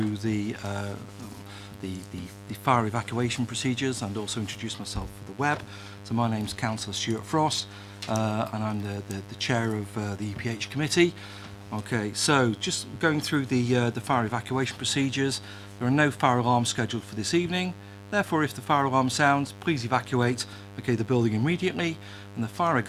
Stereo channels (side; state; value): both; identical; correlation 1.00